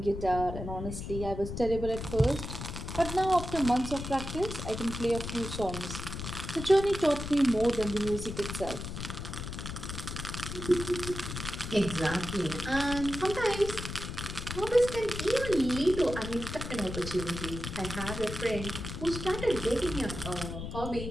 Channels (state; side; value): noise; left; rumble, 7 dB below the sound